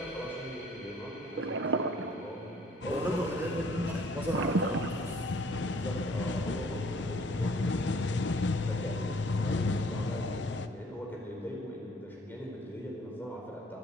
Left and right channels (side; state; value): both; normal; correlation 0.57